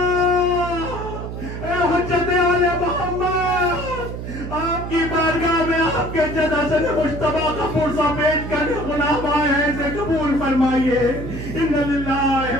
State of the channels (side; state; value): right; noise; hum, 7 dB below the sound